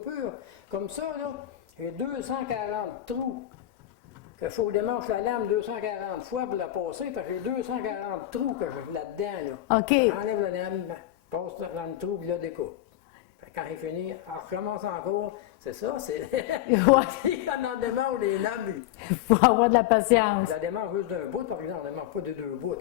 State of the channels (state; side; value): quieter; right; 13.6 dB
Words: comme ça, là, j'ai 240 trous. Il faut que je démanche la lame 240 fois pour la passer, parce que j'ai 240 trous que j'ai là-dedans, là. OK. J'enlève la lame, passe dans le trou, puis là, découpe. Quand il finit, on recommence encore. C'est ça, c'est. Quand on démange les lames, Il faut avoir de la patience. je la démange juste d'un bout, par exemple, on ne démange pas de deux bouts. Là,